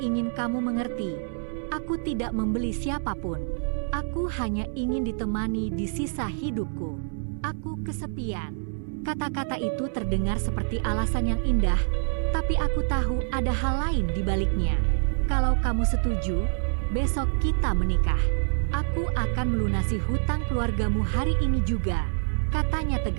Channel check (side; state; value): left; silent; digital silence